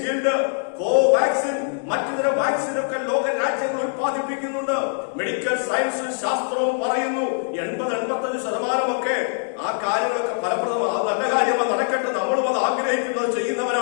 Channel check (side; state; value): right; silent; digital silence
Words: കോവാക്സിൻ, മറ്റു വാക്സിനൊക്കെ ലോക രാജ്യങ്ങൾ ഉത്പാദിപ്പിക്കുന്നുണ്ട്. മെഡിക്കൽ സയൻസും ശാസ്ത്രവും പറയുന്നു 80-85% ആ കാര്യങ്ങളൊക്കെ ഫലപ്രദമാണ്. അത് നല്ല കാര്യമാണ്, നടക്കട്ടെ. നമ്മളും അത് ആഗ്രഹിക്കുന്നത്,